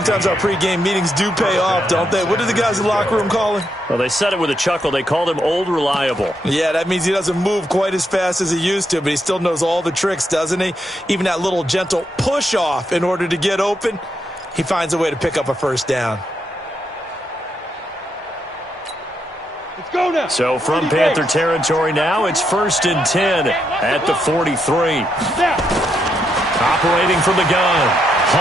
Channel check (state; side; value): normal; both; correlation 0.80